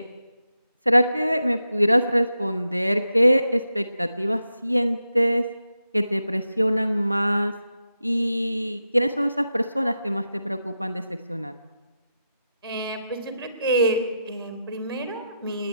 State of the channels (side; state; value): both; inverted; correlation -0.88